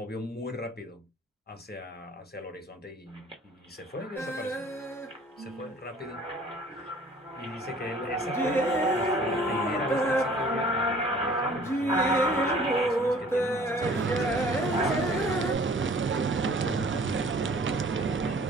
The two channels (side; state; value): both; normal; correlation 0.52